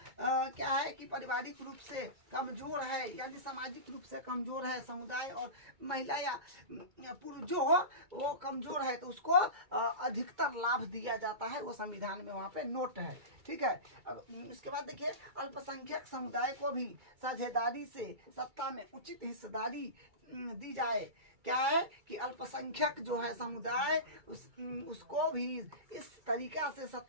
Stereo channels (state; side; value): late; left; 2.3 ms